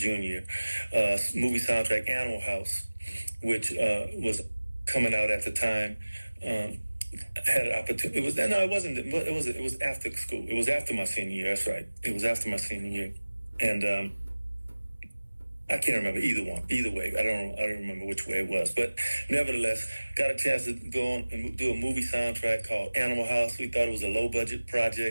year. Movie soundtrack Animal House, which was coming out at the time. Had an opportunity. It was after school. It was after my senior year. That's right. It was after my senior year, and I can't remember either way. I don't remember which way it was, but nevertheless, got a chance to go on and do a movie soundtrack called Animal House. We thought it was a low budget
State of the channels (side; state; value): both; inverted; correlation -1.00